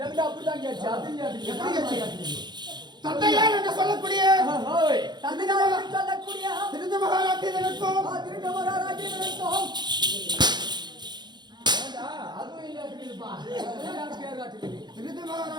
அப்படிதான் கேட்டுச்சு. அது கேட்டுச்சு. எப்படி கேட்டுச்சு? தந்தையார் என்று சொல்லக்கூடிய ஓய். தந்தையார் என்று சொல்லக்கூடிய திருது மகாராட்டியனுக்கும் திருட்டு மகாராஜனுக்கும் ஏண்டா, அதுவும் இல்லையா இருக்குதுப்பா. எல்லாரும் பேர் காட்டுது. திருது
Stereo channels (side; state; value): left; late; 0.21 ms